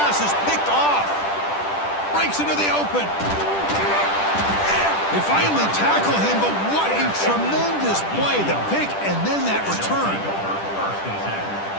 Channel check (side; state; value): right; late; 10 ms